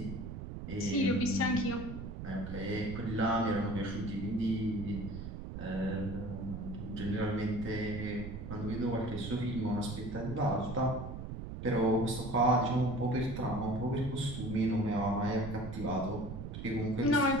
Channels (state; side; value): noise; right; rumble, 7 dB below the sound